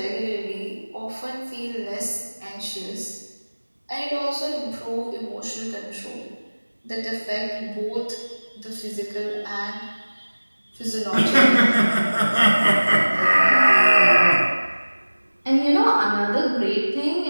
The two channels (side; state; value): both; inverted; correlation -1.00